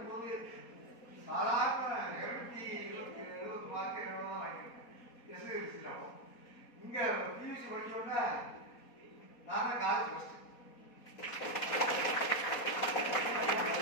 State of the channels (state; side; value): late; right; 4.2 ms